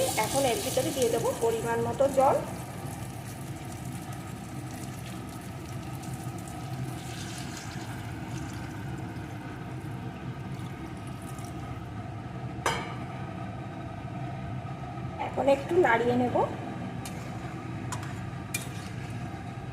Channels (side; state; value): both; identical; correlation 1.00